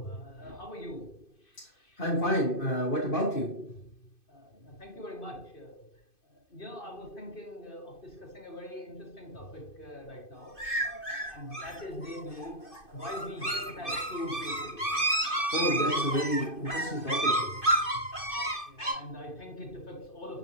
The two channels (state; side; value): late; right; 2.5 ms